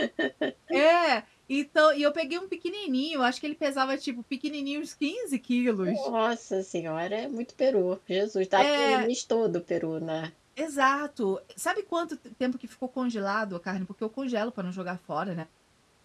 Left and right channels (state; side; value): identical; both; correlation 1.00